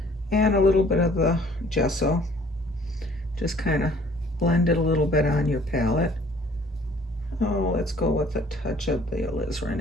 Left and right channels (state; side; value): normal; both; correlation 0.56